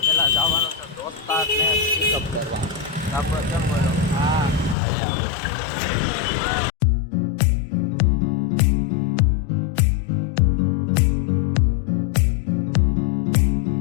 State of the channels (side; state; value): right; drops out; at 4.8 s